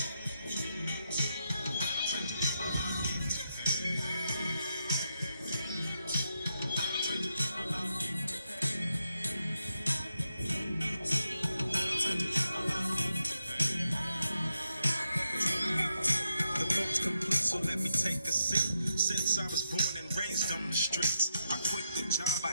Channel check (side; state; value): both; inverted; correlation -0.83